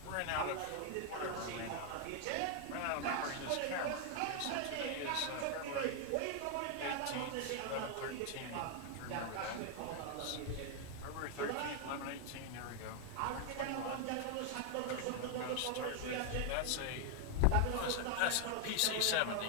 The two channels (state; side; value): different; both; correlation 0.00